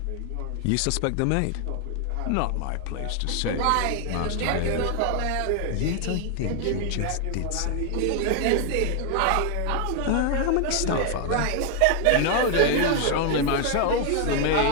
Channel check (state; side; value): different; both; correlation 0.00